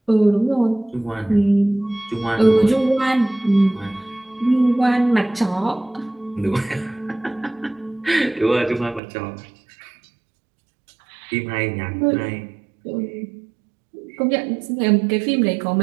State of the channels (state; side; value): drops out; left; at 9.0 s